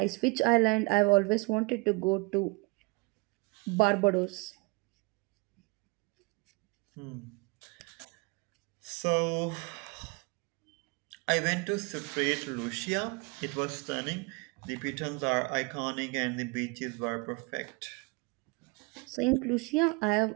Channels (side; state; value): left; quieter; 27.4 dB